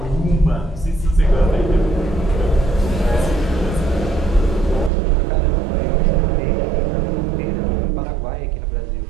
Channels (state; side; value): drops out; left; at 4.9 s